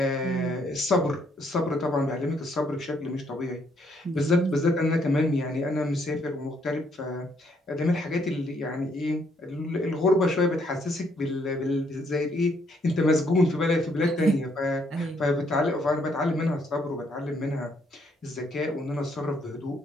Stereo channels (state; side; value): normal; both; correlation 0.70